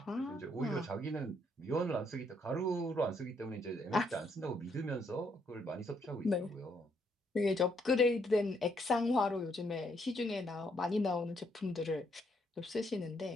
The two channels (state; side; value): normal; both; correlation 0.72